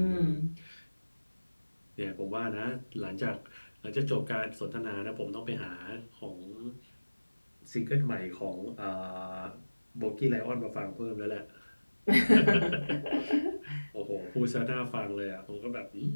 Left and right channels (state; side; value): inverted; both; correlation -1.00